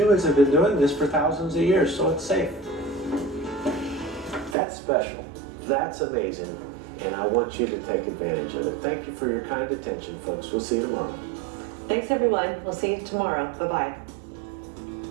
have been doing this for thousands of years, so it's safe. That's special. That's amazing. And I want you to take advantage of it. Thank you for your kind attention, folks. We'll see you tomorrow. Thanks, everyone. We'll see you tomorrow. Bye-bye.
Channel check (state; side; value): drops out; left; at 4.5 s